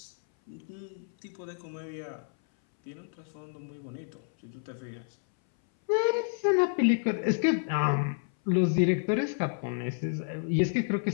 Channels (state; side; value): silent; right; 58 dB below the other